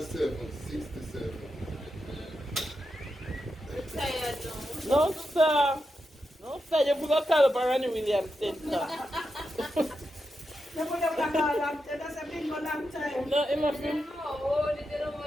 7. 67. I'm tired now. No, sir. No, sir, you forgot to call up Ronnie Williams Center. That's a big long time. No, it must be No, oh, they don't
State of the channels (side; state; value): both; normal; correlation 0.87